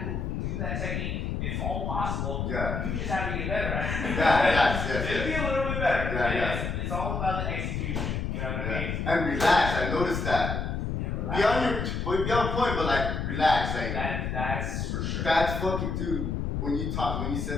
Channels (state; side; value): noise; left; rumble, 2 dB below the sound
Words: move, do that technique. It's all possible. Yeah. You just have to get better at it. Yes. Just be a little bit better. Yeah. It's all about the execution. You know what I mean? And relax. I noticed that. Be on point, but like relax. Like that's for sure. That's fucking dude. When you